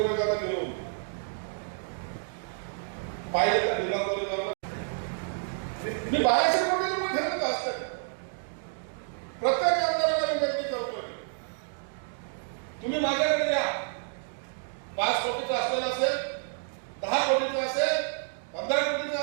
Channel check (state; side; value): silent; left; digital silence